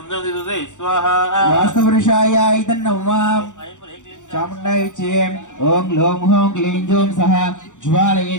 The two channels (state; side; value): late; right; 0.86 ms